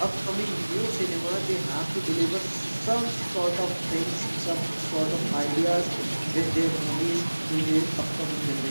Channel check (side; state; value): both; inverted; correlation -1.00